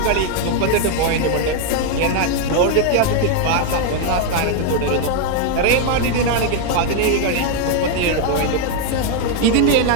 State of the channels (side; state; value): both; different; correlation 0.00